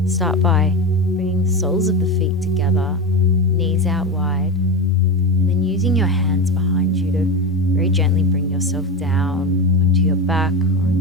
start by bringing the soles of the feet together, knees out wide, and then using your hands behind you to very gently bring yourself down onto your back or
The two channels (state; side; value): normal; both; correlation 0.20